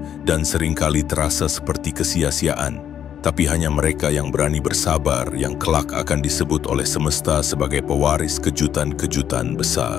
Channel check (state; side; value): quieter; right; 9.5 dB